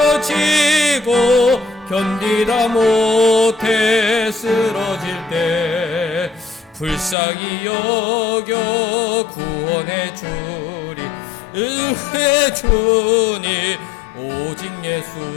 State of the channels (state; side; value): drops out; right; at 7.2 s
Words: 지고 견디다 못해 쓰러질 때 불쌍히 여겨 구원해 주리 은혜 주니 오직